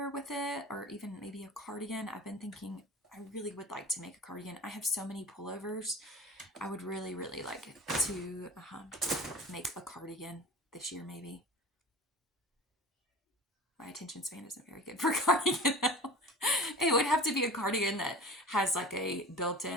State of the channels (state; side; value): normal; both; correlation 0.37